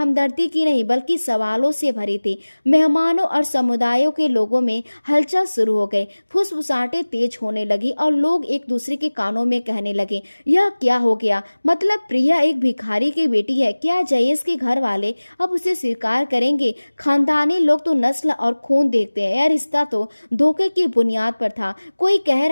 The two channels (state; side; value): inverted; both; correlation -1.00